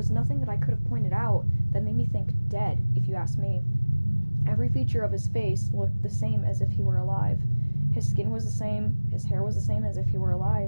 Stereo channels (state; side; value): inverted; both; correlation -1.00